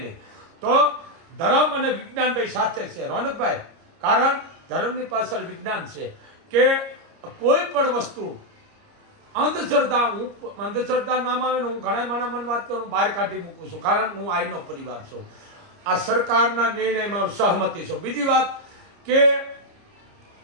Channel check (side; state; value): left; late; 29 ms